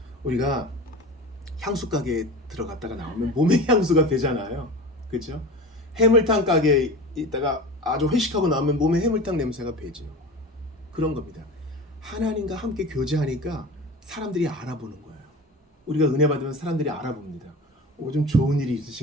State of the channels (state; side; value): normal; both; correlation 0.32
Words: 우리가 향수 가게에 들어갔다가 나오면 몸에 향수가 배잖아요. 그렇죠? 해물탕 가게에 있다가 아주 회식하고 나오면 몸에 해물탕 냄새가 배죠. 그런 겁니다. 하나님과 함께 교제하니까 사람들이 알아보는 거예요. 우리가 은혜 받으면 사람들이 알아봅니다. 좀 좋은 일이